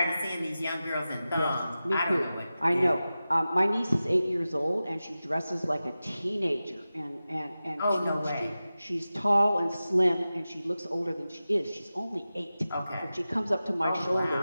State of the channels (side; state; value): both; inverted; correlation -0.94